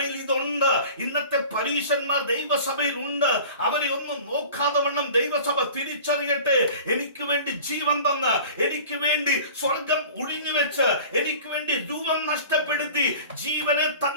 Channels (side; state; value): both; inverted; correlation -0.41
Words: ഇതുണ്ട്. ഇന്നത്തെ പരീശന്മാർ ദൈവസഭയിൽ ഉണ്ട്. അവരെ ഒന്നും നോക്കാതെ വണ്ണം ദൈവസഭ തിരിച്ചറിയട്ടെ. എനിക്ക് വേണ്ടി ജീവൻ തന്ന്, എനിക്ക് വേണ്ടി സ്വർഗം ഒഴിഞ്ഞു വെച്ച്, എനിക്ക് വേണ്ടി രൂപം നഷ്ടപ്പെടുത്തി ജീവനെ